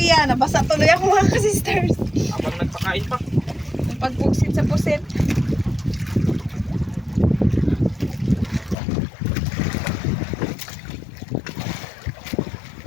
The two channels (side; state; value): right; drops out; at 8.8 s